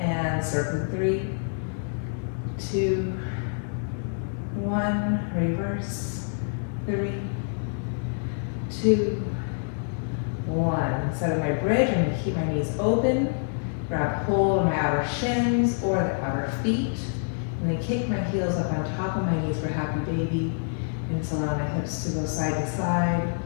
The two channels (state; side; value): silent; right; 60 dB below the other